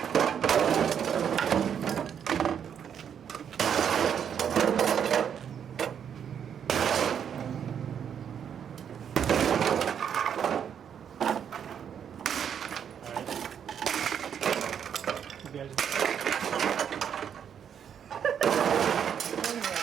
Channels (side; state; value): left; quieter; 8.3 dB